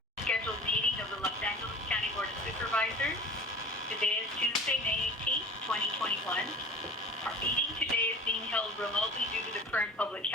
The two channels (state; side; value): normal; both; correlation 0.40